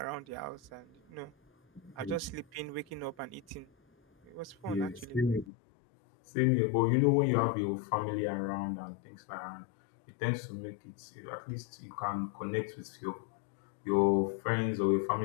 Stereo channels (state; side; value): drops out; right; at 5.5 s